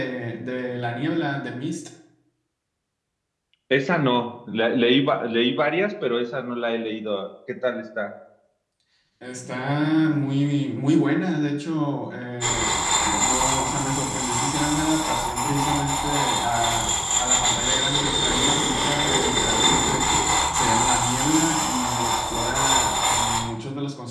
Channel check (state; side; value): identical; both; correlation 1.00